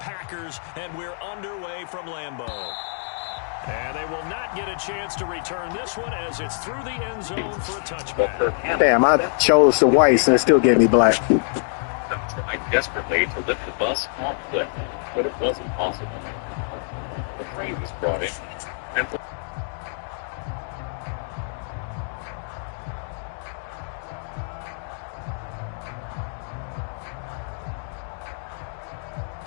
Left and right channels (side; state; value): right; silent; digital silence